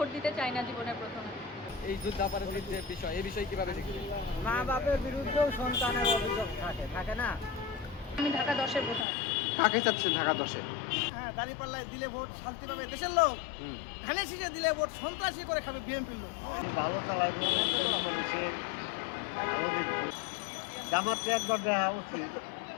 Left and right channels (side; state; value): right; drops out; at 9.1 s